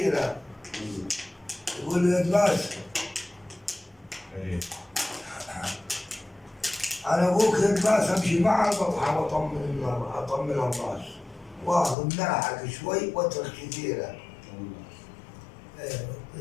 يقول لي يتباس. انا ابوك يتباس امشي معه بطحن اطمن الراس واخذ ناحك شوي واترك كثيره.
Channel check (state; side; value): drops out; right; at 12.0 s